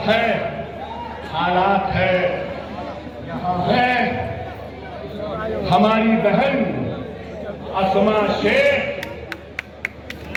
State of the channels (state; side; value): identical; both; correlation 1.00